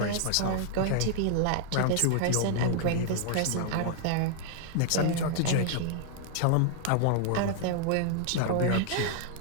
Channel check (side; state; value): both; different; correlation 0.00